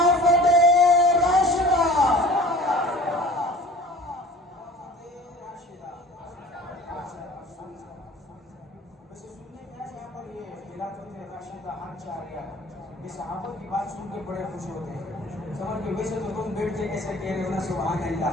خوش ہوتے ہیں. سمجھ گئے؟ ویسے تو تم بیٹھ کے کیسے کہہ رہے ہو نا سبحان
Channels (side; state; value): both; normal; correlation 0.45